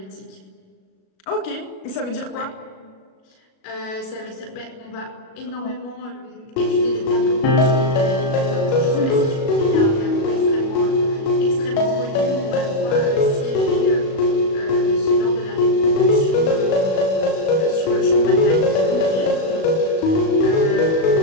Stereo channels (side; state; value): right; late; 37 ms